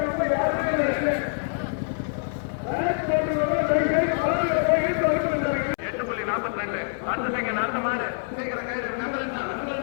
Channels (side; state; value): right; silent; 61 dB below the other